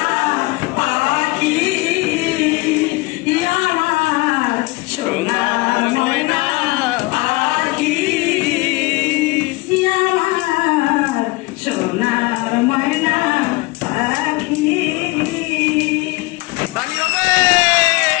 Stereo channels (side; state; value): right; quieter; 23.2 dB